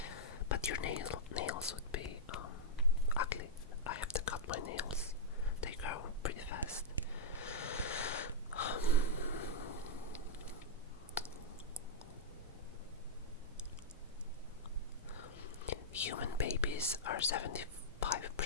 but your nails would be ugly. I have to cut my nails. They grow pretty fast. Human babies are 75%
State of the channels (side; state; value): both; normal; correlation -0.09